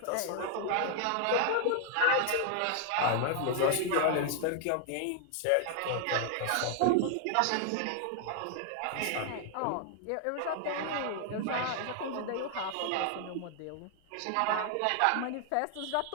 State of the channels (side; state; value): both; different; correlation 0.00